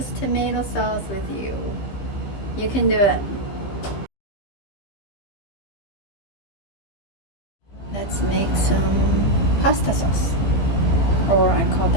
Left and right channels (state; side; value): late; right; 15 ms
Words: tomato sauce with you. You can do it. Let's make some pasta sauce, or I call